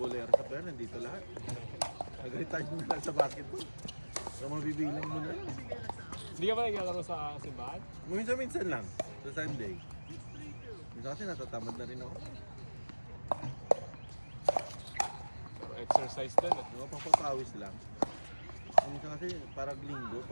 sa pera, nandito lahat. Nag-retire mo na sa basketball. So mabibilang mo na lang. Hindi ka ba naglalaro sa simbahan? Minsan-minsan lang, sa Sunday. Minsan kasi natatamad na rin ako. Pero exercise din eh. Papapawis lang. Minsan kasi parang Linggo,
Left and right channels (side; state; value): both; inverted; correlation -1.00